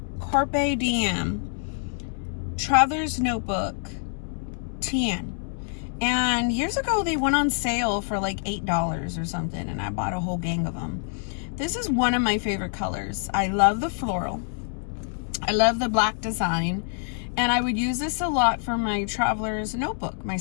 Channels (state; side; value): silent; right; 61 dB below the other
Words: Carpe Diem Traveler's Notebook TN. And years ago they went on sale for like $8 or something, and I bought a whole gang of them. This is one of my favorite colors. I love the floral. I love the black design. And I would use this a lot for my traveler's notebook, my